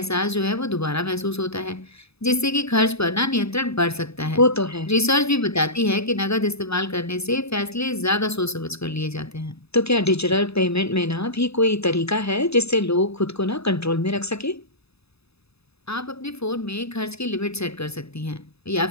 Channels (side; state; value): right; late; 0.79 ms